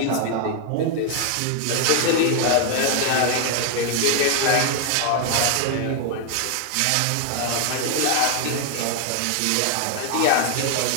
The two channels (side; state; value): both; different; correlation 0.00